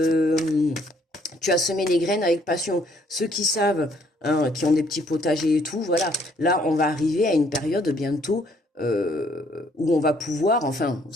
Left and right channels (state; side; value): normal; both; correlation 0.66